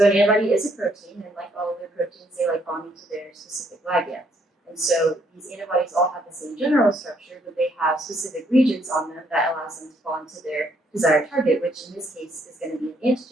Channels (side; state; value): both; normal; correlation 0.69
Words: an antibody is a protein, and like all other proteins, they like bonding to their specific ligands. And so these antibodies all have the same general structure, but they have specific regions on them that allows them to bond to their desired target, which in this case is going to be an